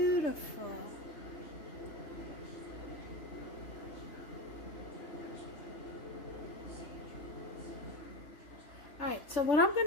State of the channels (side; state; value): right; late; 3.4 ms